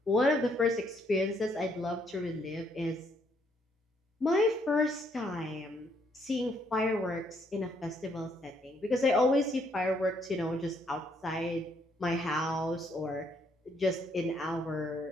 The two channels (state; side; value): normal; both; correlation 0.70